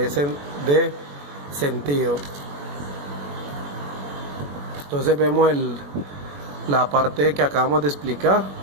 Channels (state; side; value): late; left; 21 ms